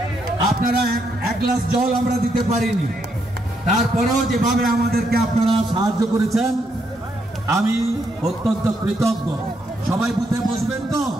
আপনারা এক গ্লাস জল আমরা দিতে পারিনি, তারপরেও যেভাবে আমাদেরকে আপনারা সাহায্য করেছেন আমি অত্যন্ত কৃতজ্ঞ। সবাই বুথে বসবেন তো?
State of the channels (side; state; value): both; normal; correlation 0.77